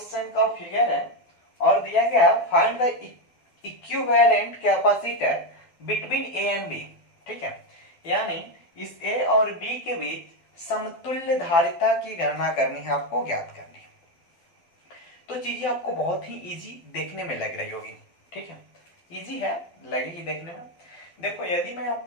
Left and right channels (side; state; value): right; late; 12 ms